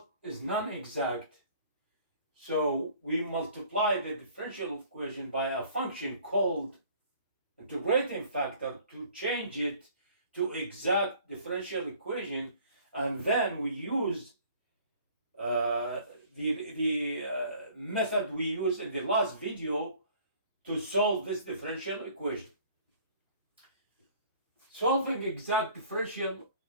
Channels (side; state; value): both; inverted; correlation -0.53